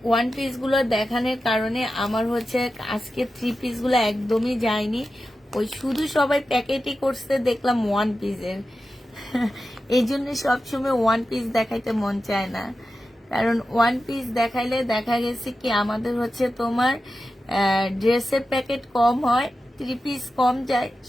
1 পিসগুলো দেখানোর কারণে আমার হচ্ছে আজকে 3 পিসগুলো একদমই যায়নি। ওই শুধু সবাই প্যাকেটই করছে, দেখলাম 1 পিসের। এই জন্য সবসময় 1 পিস দেখাইতে মন চায় না, কারণ 1 পিস দেখাইলে দেখা গেছে কি আমাদের হচ্ছে তোমার ড্রেসের প্যাকেট কম হয়, 3 পিস কম যায়।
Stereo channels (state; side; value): normal; both; correlation 0.92